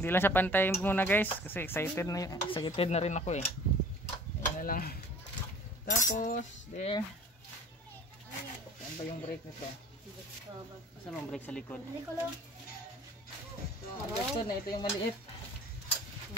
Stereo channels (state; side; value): normal; both; correlation 0.48